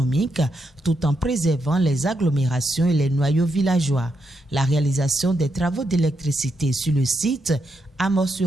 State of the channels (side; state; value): both; normal; correlation 0.81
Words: tout en préservant les agglomérations et les noyaux villageois. La réalisation des travaux d'électricité sur le site